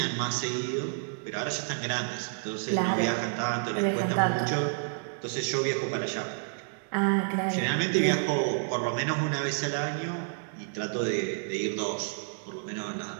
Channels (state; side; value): silent; left; digital silence